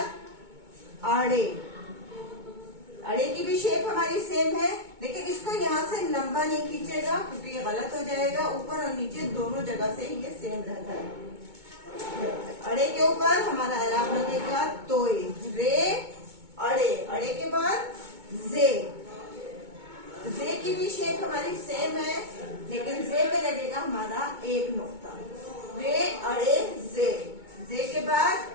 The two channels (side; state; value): left; late; 2.2 ms